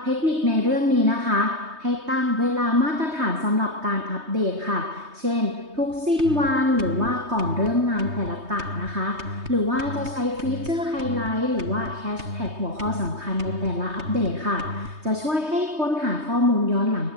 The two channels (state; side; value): late; left; 3.2 ms